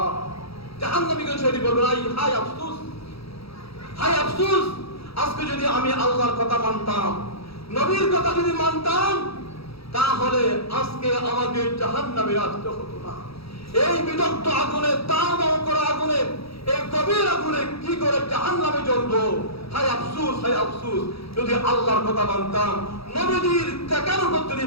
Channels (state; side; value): late; right; 0.77 ms